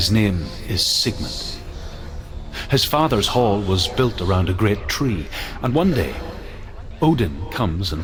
name is Sigmund. His father's hall was built around a great tree, and one day, Odin comes and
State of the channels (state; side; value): identical; both; correlation 1.00